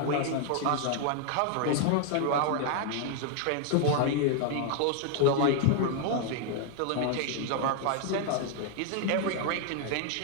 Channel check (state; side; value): different; both; correlation 0.00